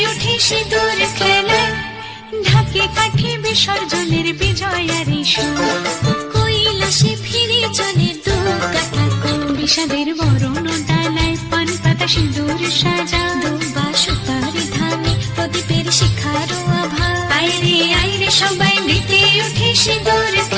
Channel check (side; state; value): both; identical; correlation 1.00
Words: উঠে সিঁদুর খেলায়, ঢাকে কাঠি বিসর্জনের বিজয়ারি সুর, কৈলাসে ফিরে চলে দু কাঠা কুল। বিষাদের বরণ ডালায় পান পাতা সিঁদুর সাজা, দৌপা সুপারি ধানে প্রদীপের শিখারো আভা। আইরে সবাই মেতে উঠে সিঁদুর